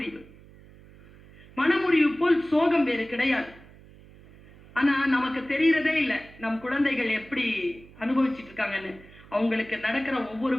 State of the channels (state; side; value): noise; right; hum, 22 dB below the sound